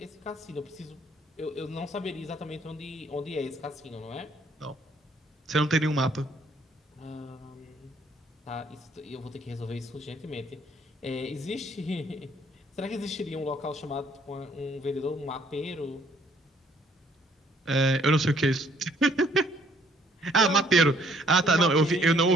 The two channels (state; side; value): normal; both; correlation 0.63